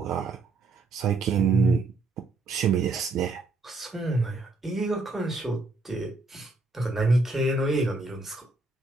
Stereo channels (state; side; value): quieter; left; 3.5 dB